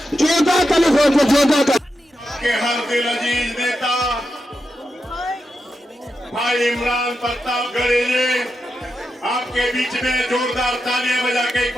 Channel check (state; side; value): normal; both; correlation 0.87